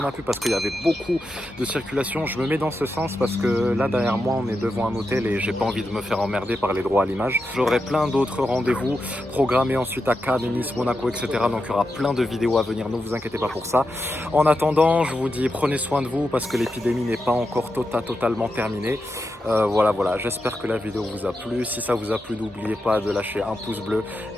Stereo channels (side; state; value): both; normal; correlation 0.87